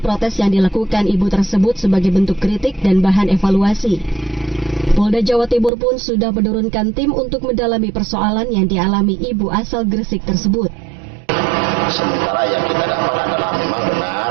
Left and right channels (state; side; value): drops out; left; at 5.7 s